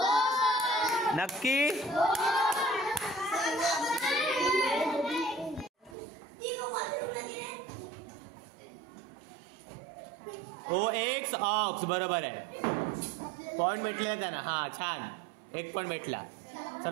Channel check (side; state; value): left; drops out; at 6.0 s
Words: नक्की. OX ऑक्स, बरोबर आहे. पॉइंट भेटले त्यांना. हा छान, 1 पॉइंट भेटला.